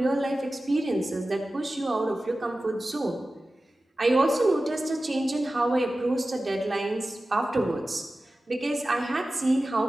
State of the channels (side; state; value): both; normal; correlation 0.95